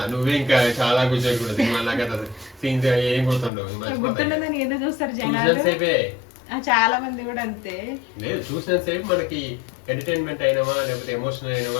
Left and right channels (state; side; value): drops out; right; at 3.5 s